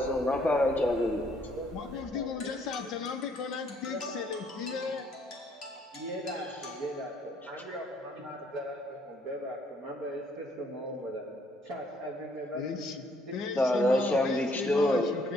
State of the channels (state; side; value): normal; both; correlation 0.66